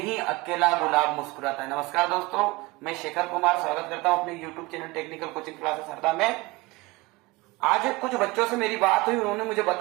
अकेला गुलाब मुस्कुराता है। नमस्कार दोस्तों, मैं शेखर कुमार स्वागत करता हूं अपने YouTube channel technical coaching classes Harda में। आज कुछ बच्चों से मेरी बात हुई, उन्होंने मुझे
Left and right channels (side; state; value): left; quieter; 22.6 dB